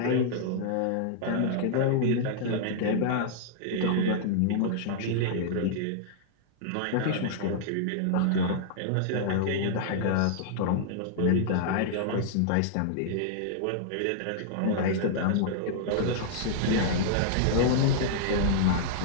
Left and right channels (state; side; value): different; both; correlation -0.01